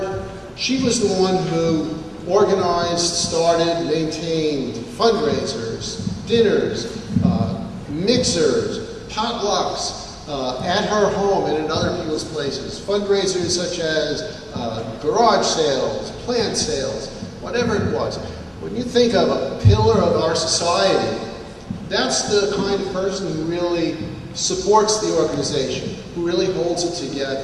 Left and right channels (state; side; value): identical; both; correlation 1.00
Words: She was the one who organized, started, maintained fundraisers, dinners, mixers, potlucks, at her home and in other people's places. Fundraisers such as garage sales, plant sales, whatever it was. When you think of a pillar of our society, that's the kind of person who really supports the organization, who really holds it